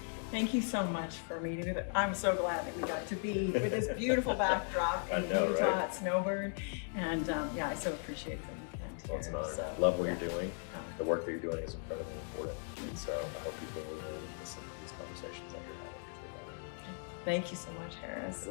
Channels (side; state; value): right; silent; 53 dB below the other